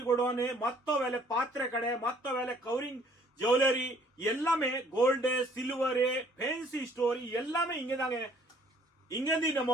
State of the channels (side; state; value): both; normal; correlation 0.60